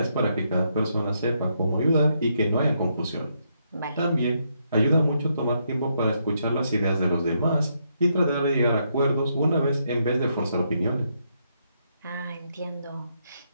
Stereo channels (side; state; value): both; inverted; correlation -0.77